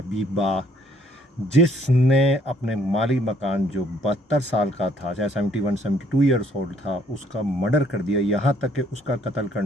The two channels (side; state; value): both; normal; correlation 0.65